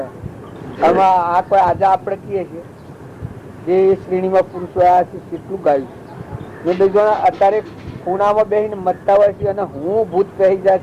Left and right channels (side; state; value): both; identical; correlation 1.00